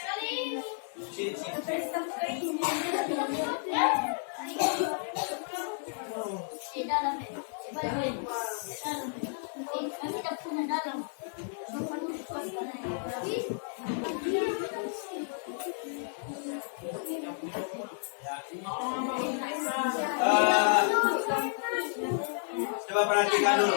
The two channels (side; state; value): right; silent; digital silence